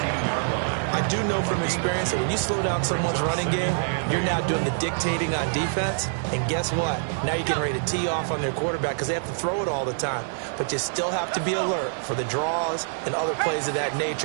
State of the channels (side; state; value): left; silent; digital silence